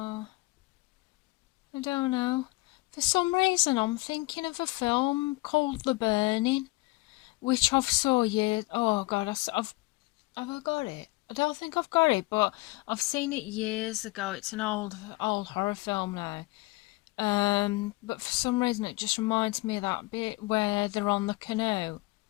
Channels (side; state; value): right; quieter; 22.5 dB